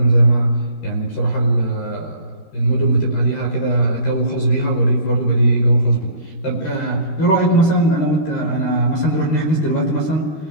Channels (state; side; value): late; right; 13 ms